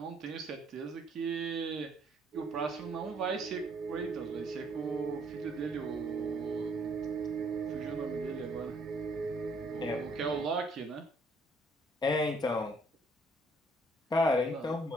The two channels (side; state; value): both; normal; correlation 0.65